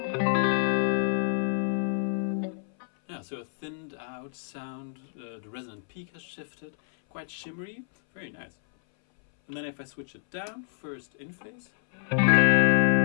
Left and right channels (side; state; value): right; silent; 59 dB below the other